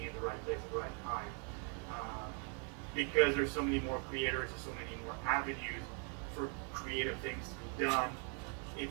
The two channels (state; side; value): quieter; left; 39.4 dB